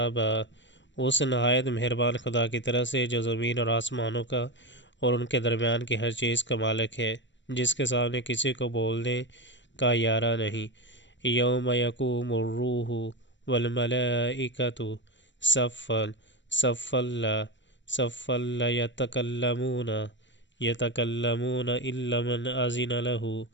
اس نہایت مہربان خدا کی طرف سے جو زمین اور آسمانوں کا اور ان کے درمیان کی ہر چیز کا مالک ہے، جس کے سامنے کسی کو بولنے کا یارہ نہیں، یوم یقوم الروح والملائکۃ صفا صفا لا یتکلمون الا من اذن لہ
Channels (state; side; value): late; right; 0.54 ms